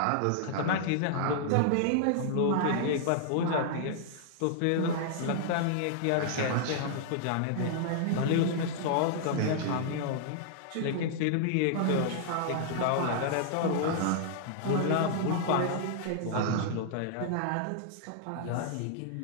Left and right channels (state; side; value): different; both; correlation -0.01